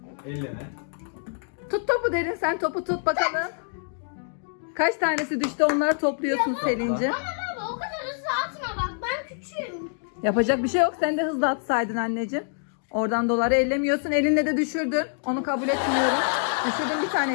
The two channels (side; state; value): right; silent; digital silence